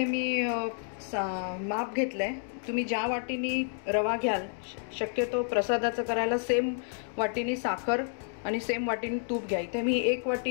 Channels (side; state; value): right; silent; 58 dB below the other